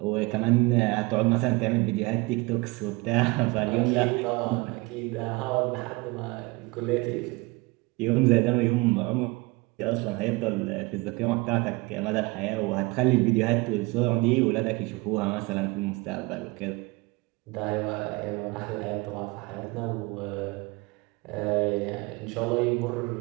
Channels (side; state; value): left; quieter; 23.6 dB